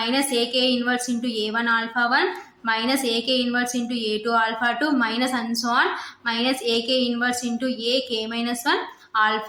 AK inverse into A1 alpha 1 minus AK inverse into A2 alpha 2 minus and so on minus AK inverse into AK minus 1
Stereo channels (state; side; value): identical; both; correlation 1.00